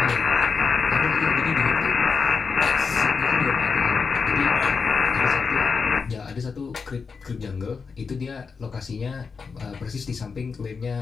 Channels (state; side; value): quieter; right; 5.3 dB